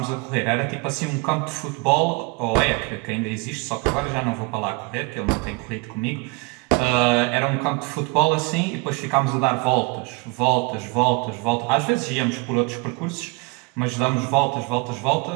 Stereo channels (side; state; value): left; quieter; 27.0 dB